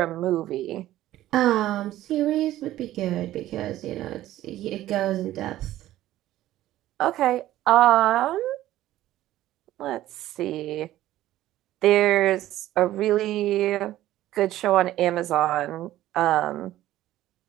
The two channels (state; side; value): quieter; left; 14.3 dB